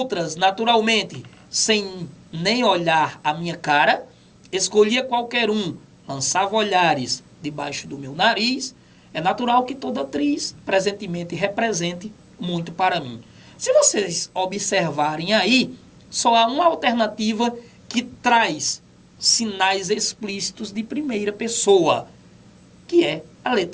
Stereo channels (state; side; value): identical; both; correlation 1.00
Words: naturalmente, sem nem olhar a minha cara. Escolhia qualquer um, lançava olhares debaixo do meu nariz. É natural que toda atriz, presentemente, represente muito para mim. Se vocês observarem aí, só há uma alternativa que traz sinais explícitos de primeira pessoa, que é a